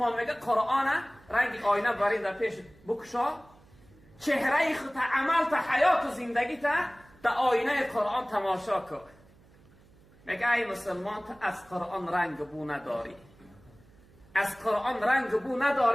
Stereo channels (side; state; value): right; noise; hum, 27 dB below the sound